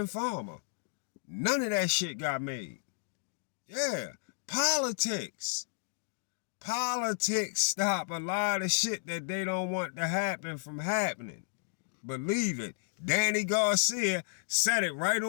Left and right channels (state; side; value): silent; right; digital silence